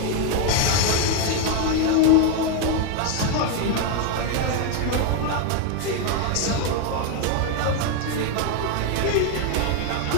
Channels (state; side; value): different; both; correlation 0.01